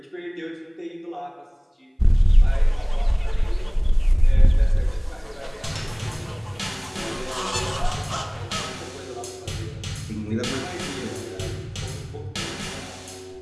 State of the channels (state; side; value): identical; both; correlation 1.00